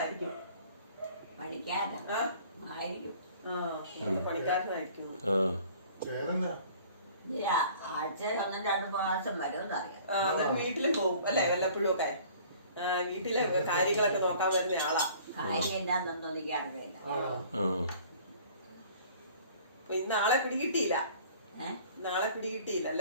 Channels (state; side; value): inverted; both; correlation -0.51